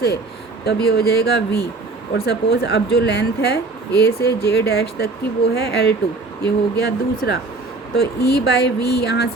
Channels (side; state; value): left; quieter; 3.5 dB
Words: तब ये हो जाएगा V। और सपोज़ अब जो लेंथ है A से J' तक की वो है L2, ये हो गया दूसरा। तो E/V यहाँ